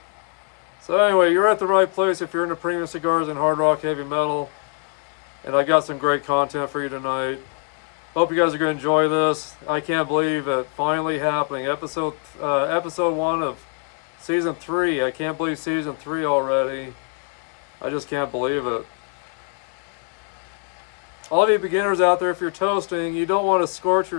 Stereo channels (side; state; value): right; quieter; 37.7 dB